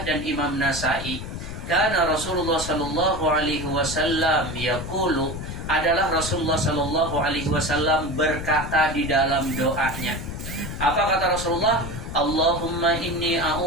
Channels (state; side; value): noise; left; rumble, 8 dB below the sound